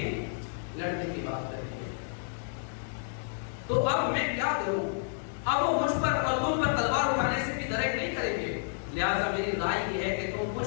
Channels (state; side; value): silent; right; digital silence